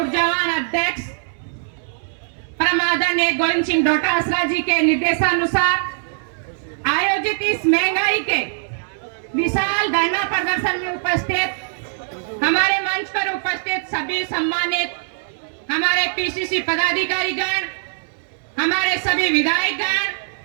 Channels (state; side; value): silent; left; 65 dB below the other